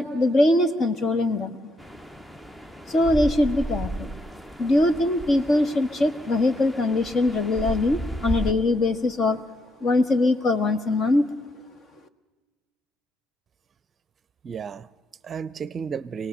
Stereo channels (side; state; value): both; normal; correlation 0.77